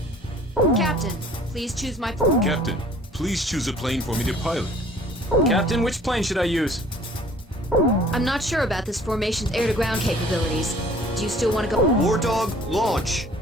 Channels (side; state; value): both; normal; correlation 0.53